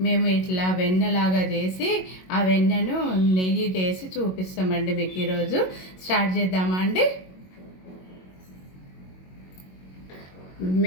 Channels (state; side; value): late; right; 22 ms